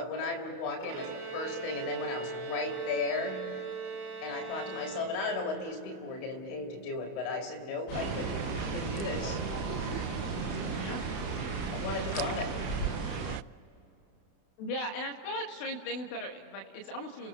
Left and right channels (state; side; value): late; right; 31 ms